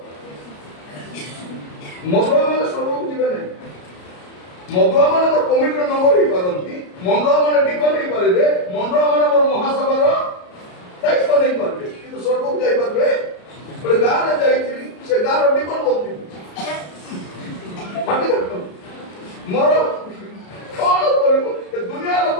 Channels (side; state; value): right; late; 33 ms